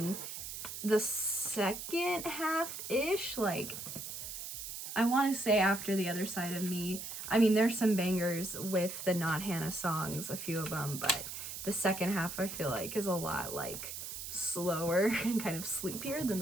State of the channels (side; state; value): right; noise; hiss, 7 dB below the sound